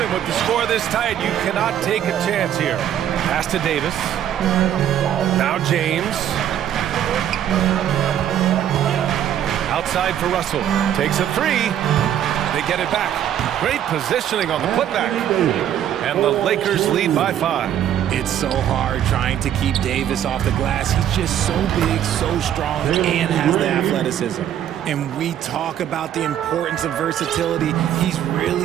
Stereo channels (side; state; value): left; quieter; 10.5 dB